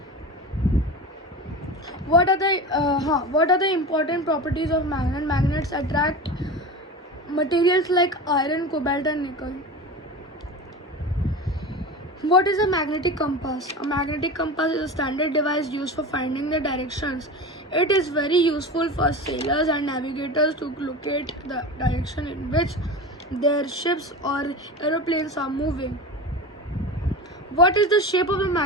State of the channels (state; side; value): normal; both; correlation 0.28